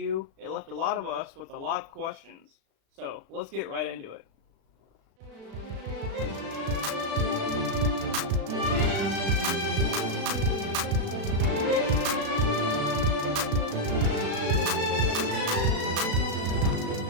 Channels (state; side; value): late; left; 36 ms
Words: it left a lot of us with a lot of questions. So, let's get right into it.